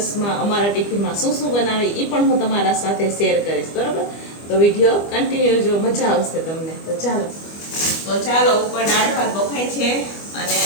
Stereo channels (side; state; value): right; late; 25 ms